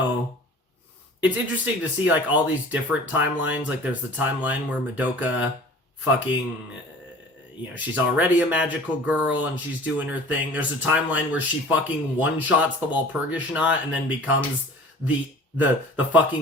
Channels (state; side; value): normal; both; correlation 0.44